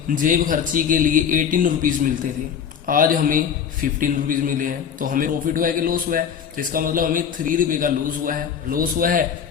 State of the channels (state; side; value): quieter; right; 7.7 dB